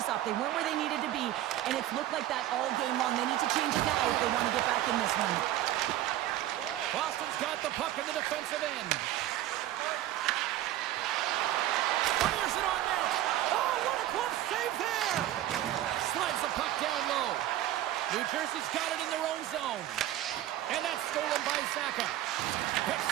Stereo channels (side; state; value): left; quieter; 13.6 dB